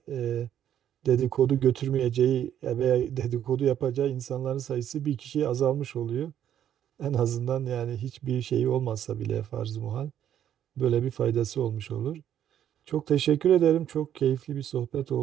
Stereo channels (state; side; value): quieter; left; 10.3 dB